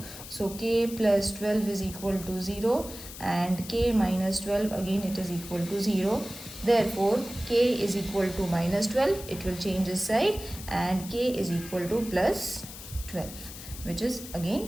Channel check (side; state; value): left; noise; hiss, 13 dB below the sound